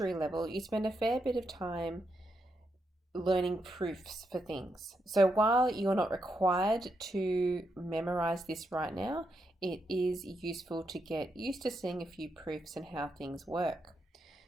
level, you spend a fair bit of time learning proofs for things. So while you're not required to memorize this right now, it is useful to get used to seeing a few proofs and how things work.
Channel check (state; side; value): normal; both; correlation 0.82